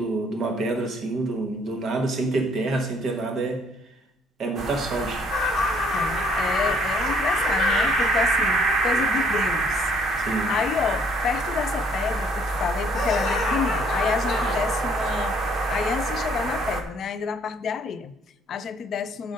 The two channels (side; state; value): both; normal; correlation 0.63